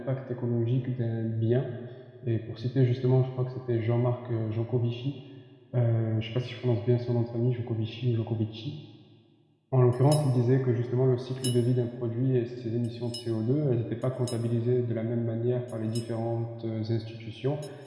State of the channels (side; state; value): both; identical; correlation 1.00